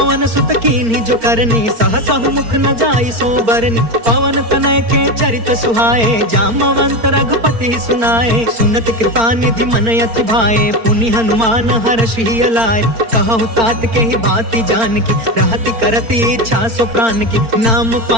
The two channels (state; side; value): late; left; 4.4 ms